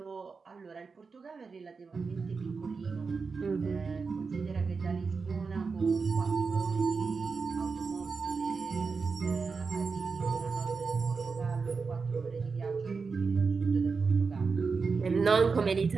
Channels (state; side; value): quieter; left; 4.8 dB